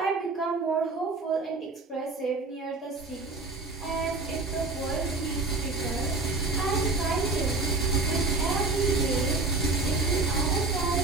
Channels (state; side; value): quieter; left; 3.5 dB